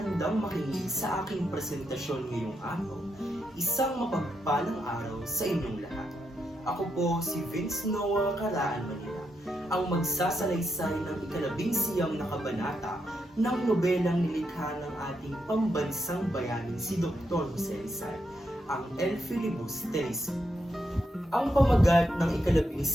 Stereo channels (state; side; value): normal; both; correlation 0.82